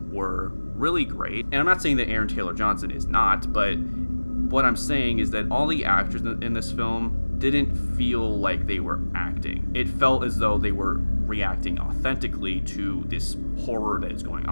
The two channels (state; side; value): inverted; both; correlation -1.00